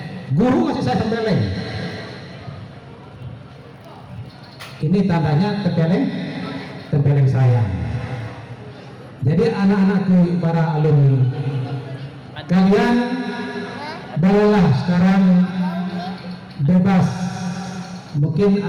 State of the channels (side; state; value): both; identical; correlation 1.00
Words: guru masih saya tempeleng. Ini tandanya tempeleng sayang. Jadi anak-anakku para alumni, kalian bolehlah sekarang bebas. Mungkin